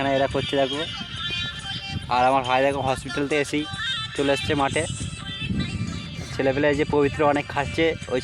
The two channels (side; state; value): both; identical; correlation 1.00